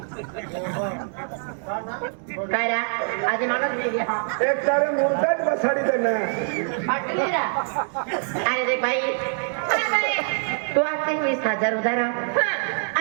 काय रा आज माणूस गेली हा एक तारे मुर्दाच बसाडी देना फाटली रा अरे देख भाई अरे भाई तू आते 20,000 उधार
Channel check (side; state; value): left; silent; 58 dB below the other